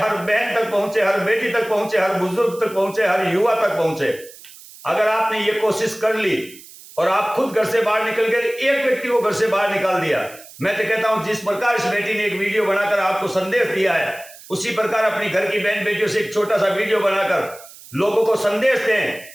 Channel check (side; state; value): right; noise; hiss, 19 dB below the sound